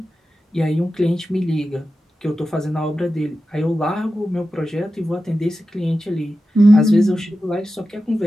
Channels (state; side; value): normal; both; correlation 0.92